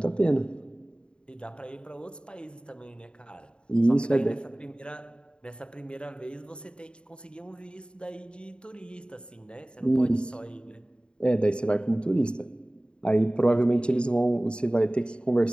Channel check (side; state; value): right; late; 0.053 ms